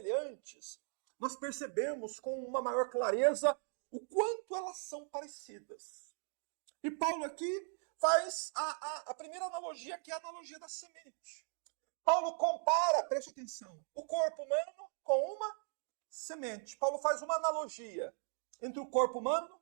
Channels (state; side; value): silent; left; 52 dB below the other